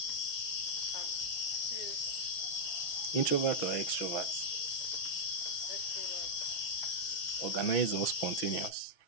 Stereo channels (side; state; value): right; late; 6.2 ms